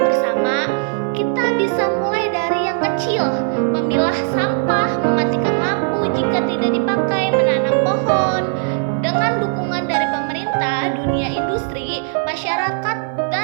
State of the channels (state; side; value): silent; left; 57 dB below the other